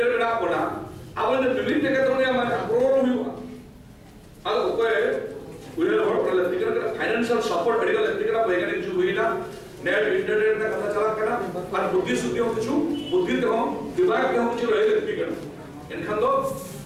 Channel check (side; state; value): both; identical; correlation 1.00